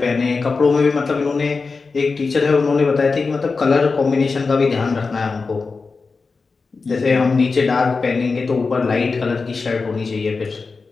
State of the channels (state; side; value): quieter; right; 4.4 dB